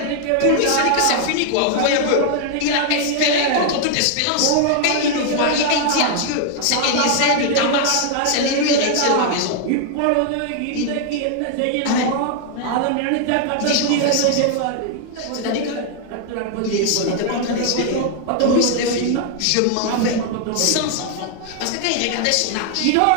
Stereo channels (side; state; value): both; different; correlation 0.00